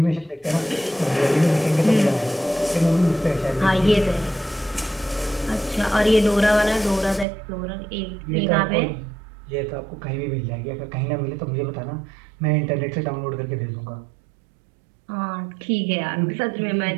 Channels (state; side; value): drops out; left; at 7.2 s